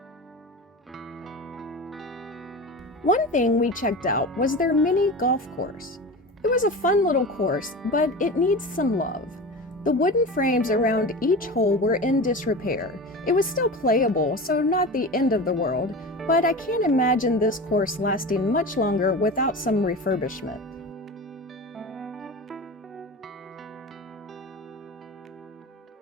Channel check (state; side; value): normal; both; correlation 0.30